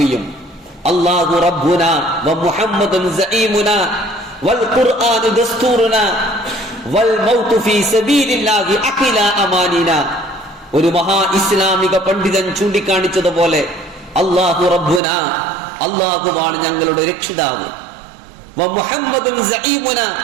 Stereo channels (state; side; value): drops out; left; at 15.0 s